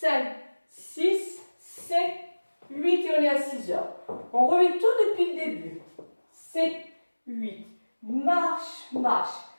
6, 7, 8 et on est à 6 heures. On remet tout depuis le début. 7, 8, marche, marche,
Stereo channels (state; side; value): inverted; both; correlation -1.00